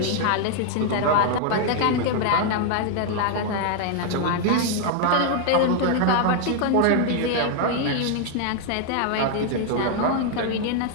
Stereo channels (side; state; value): both; different; correlation 0.00